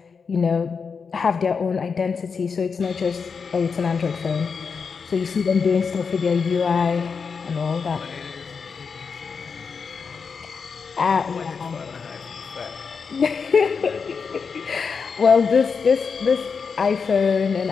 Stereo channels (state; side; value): quieter; right; 5.5 dB